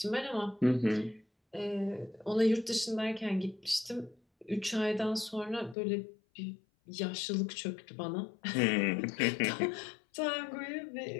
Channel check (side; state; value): right; drops out; at 5.8 s